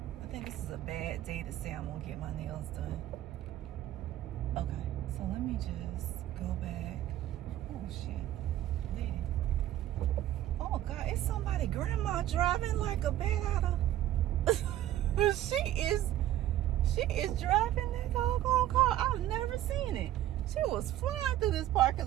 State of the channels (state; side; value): quieter; left; 13.1 dB